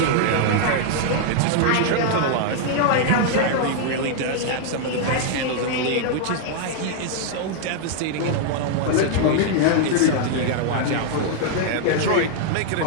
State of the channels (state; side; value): different; both; correlation 0.00